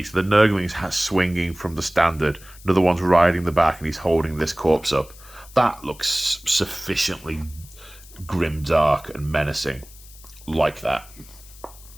the Nurgling's swinging from the standard. Another one's riding the back, and he's holding this corpse up. That looks sufficiently grimdark and menacing. Like that.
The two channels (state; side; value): noise; left; hiss, 21 dB below the sound